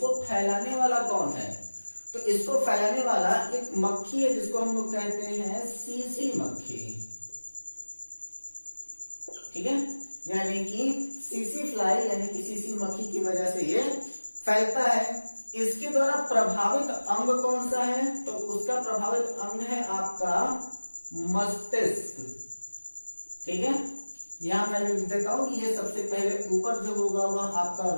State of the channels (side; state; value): both; inverted; correlation -1.00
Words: फैलाने वाला कौन है, तो इसको फैलाने वाला एक मक्खी है जिसको हम लोग कहते हैं सीसी मक्खी। ठीक है, यानी कि सीसी फ्लाई यानी कि सीसी मक्खी की वजह से ये फैलता है। इसके द्वारा प्रभावित अंग कौन सा है, तो उसका प्रभावित अंग है आपका मस्तिष्क। ठीक है, यहां मैं लिख देता हूं कि ये सबसे पहले ऊपर जो होगा वह आपका